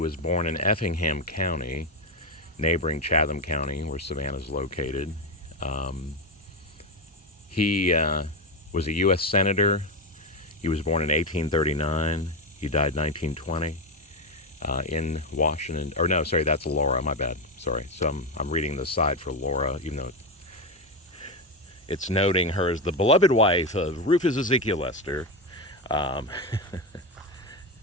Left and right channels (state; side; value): normal; both; correlation 0.13